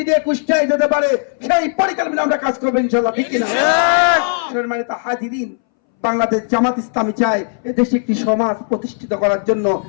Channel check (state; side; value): silent; right; 65 dB below the other